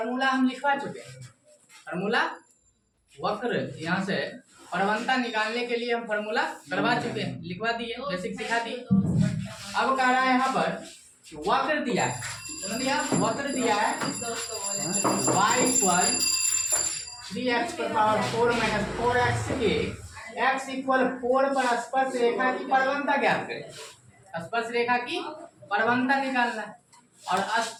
हम लिखवा चुके हैं। फार्मूला वक्र यहाँ से प्रवणता निकालने के लिए हम फार्मूला करवा चुके हैं, लिखवा दिए, बेसिक सिखा दिए। अब कह रहा है यहाँ पर वक्र दिया है, वक्र दिया है y इक्वल 3x पर पावर 4 माइनस 4x के x इक्वल 4 पर स्पर्श रेखा की परवणता ज्ञात करें। स्पर्श रेखा की परवणता निकालना है और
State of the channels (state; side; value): identical; both; correlation 1.00